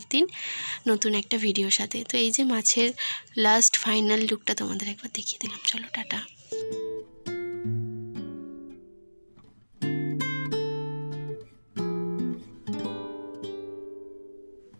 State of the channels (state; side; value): inverted; both; correlation -1.00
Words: দিন নতুন একটা ভিডিওর সাথে। তো এই যে মাছের লাস্ট ফাইনাল লুকটা তোমাদের একবার দেখিয়ে দিলাম। চলো, টাটা।